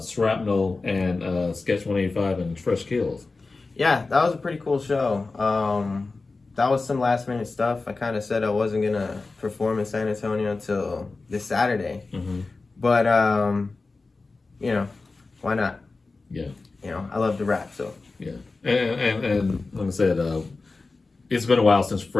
Shrapnel and Sketch 185 and Fresh Kills. Yeah, that was a pretty cool show. That was some last minute stuff. I kind of said I wasn't going to perform in San Antonio until this Saturday. Mm-hmm. But, you know, why not? Yeah. You know, I love to rap, so. Yeah. And like I said, it's been a while since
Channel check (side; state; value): right; quieter; 3.7 dB